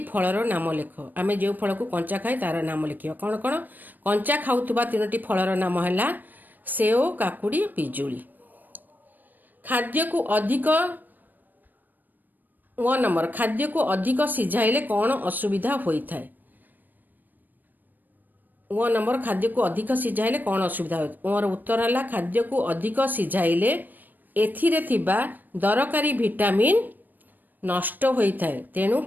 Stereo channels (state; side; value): late; left; 0.088 ms